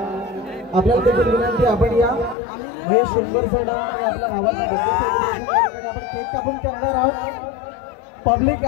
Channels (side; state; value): right; drops out; at 2.4 s